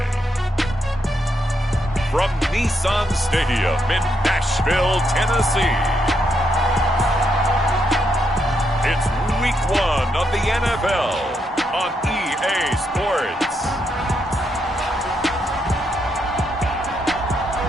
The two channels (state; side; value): normal; both; correlation 0.79